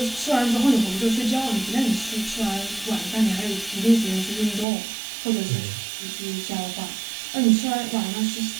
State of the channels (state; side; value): drops out; left; at 4.7 s